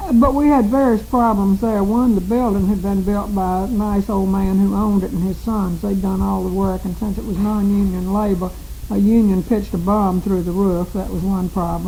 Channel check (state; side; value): identical; both; correlation 1.00